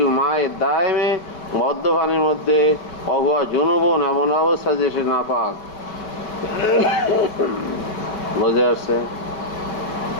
মায়ে দায়েমে মদ্য পানির মধ্যে অহুয়া জুনুবন এমন অবস্থা যে সে নাপাক। বুঝে আসছে?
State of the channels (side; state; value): right; late; 4.8 ms